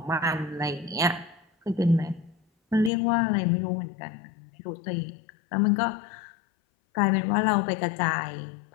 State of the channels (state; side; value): drops out; right; at 2.9 s